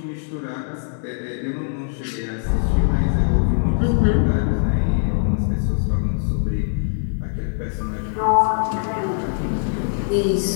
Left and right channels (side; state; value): right; silent; digital silence